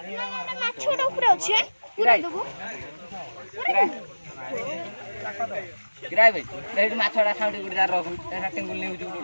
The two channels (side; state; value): both; inverted; correlation -1.00